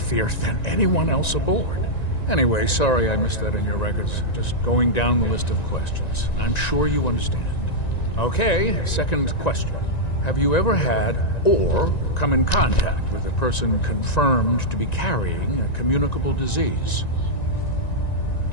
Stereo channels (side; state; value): right; late; 1.9 ms